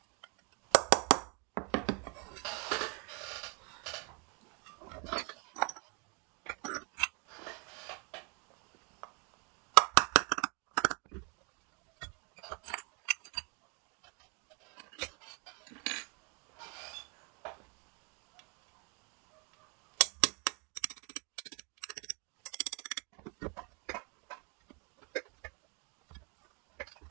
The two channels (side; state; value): left; quieter; 34.3 dB